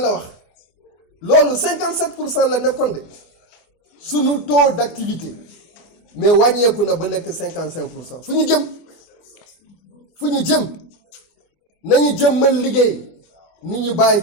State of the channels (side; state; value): right; late; 24 ms